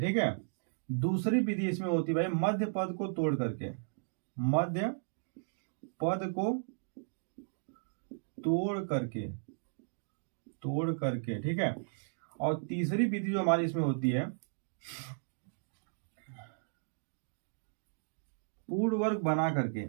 ठीक है। दूसरी विधि इसमें होती है भाई मध्य पद को तोड़ करके, मध्य पद को तोड़ करके ठीक है। और तीसरी विधि जो हमारी इसमें होती है पूर्ण वर्ग बना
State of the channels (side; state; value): left; silent; digital silence